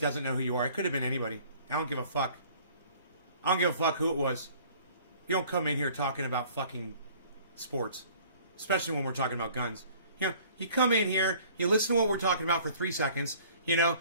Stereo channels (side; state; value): both; inverted; correlation -0.53